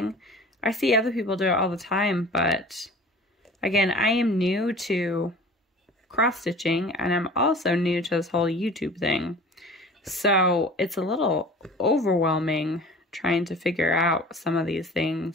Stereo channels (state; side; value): normal; both; correlation 0.42